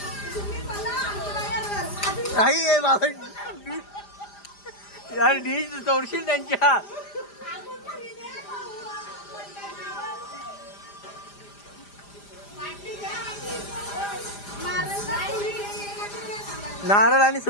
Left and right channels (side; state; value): right; late; 5.0 ms